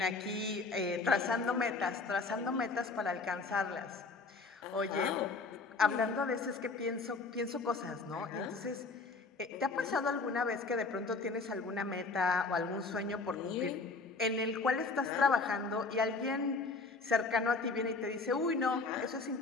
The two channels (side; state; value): right; quieter; 4.0 dB